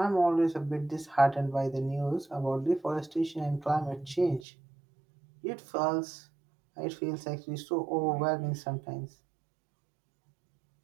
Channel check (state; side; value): drops out; left; at 4.5 s